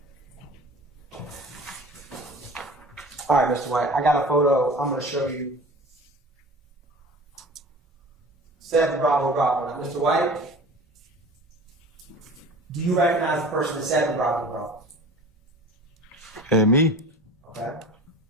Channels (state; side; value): normal; both; correlation 0.40